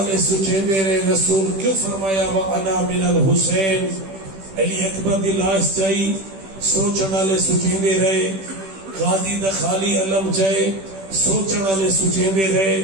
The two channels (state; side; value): late; left; 16 ms